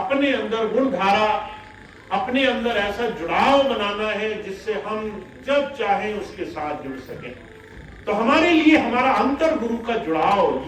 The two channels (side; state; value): both; identical; correlation 1.00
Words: अंदर गुण धारा, अपने अंदर ऐसा जुड़ाव बनाना है जिससे हम जब चाहें उसके साथ जुड़ सकें। तो हमारे लिए हमारा अंतर गुरु का